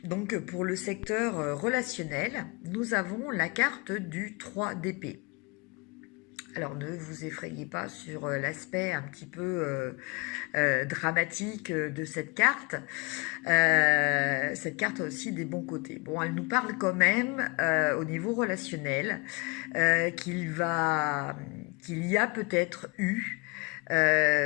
donc pour le secteur relationnel, nous avons la carte du 3 d'épée. Alors ne vous effrayez pas sur l'aspect un petit peu dramatique de cette carte. Cette carte a aussi des bons côtés. Bon, elle nous parle quand même au niveau relationnel qu'il y a peut-être eu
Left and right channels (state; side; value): quieter; right; 29.4 dB